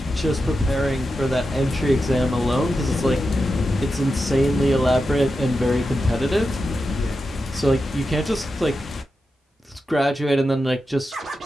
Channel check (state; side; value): normal; both; correlation 0.90